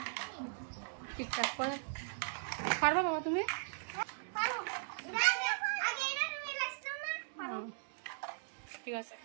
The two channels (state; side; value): silent; left; digital silence